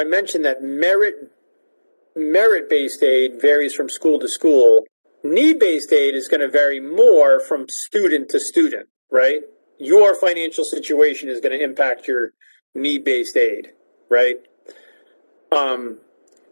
mentioned that merit-based aid varies from school to school. Need-based aid is going to vary more from student to student, right? Your financial situation is going to impact your need-based aid, right?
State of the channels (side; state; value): both; inverted; correlation -1.00